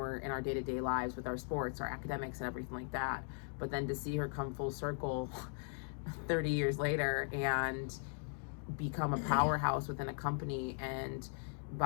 in our day-to-day lives with our sports, our academics, and everything like that. But then to see her come full circle 30 years later and become a powerhouse within a company and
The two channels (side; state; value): right; silent; 52 dB below the other